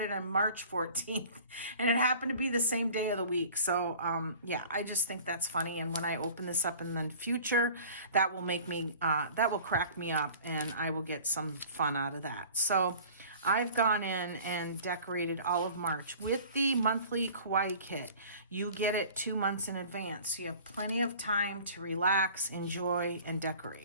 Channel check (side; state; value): both; inverted; correlation -0.44